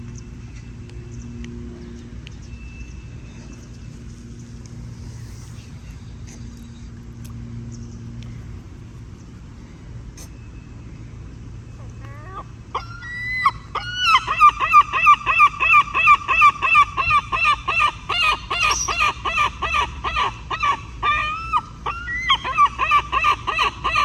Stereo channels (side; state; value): both; identical; correlation 1.00